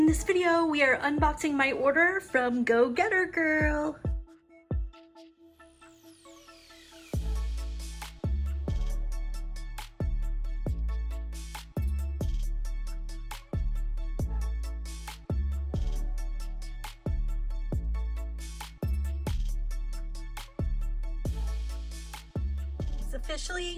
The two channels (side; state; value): both; identical; correlation 1.00